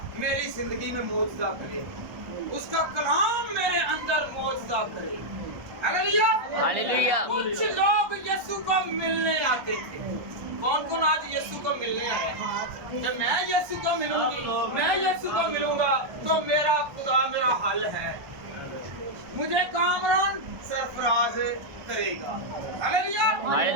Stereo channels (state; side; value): late; left; 1.3 ms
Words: मेरी जिंदगी में मौजज़ा करे, उसका कलाम मेरे अंदर मौजज़ा करे। Hallelujah, hallelujah. कुछ लोग यीशु को मिलने आते थे। कौन कौन आज यीशु को मिलने आया? जब मैं यीशु को मिलूंगी, मैं यीशु को मिलूंगा तो मेरा खुदा मेरा हल है, मुझे कामरान सरफराज करेगा। Hallelujah,